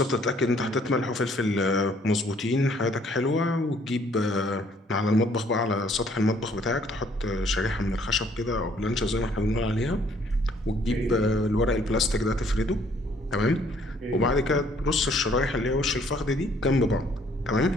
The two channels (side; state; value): both; normal; correlation 0.63